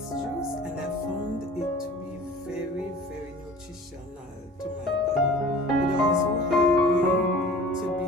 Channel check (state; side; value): normal; both; correlation 0.44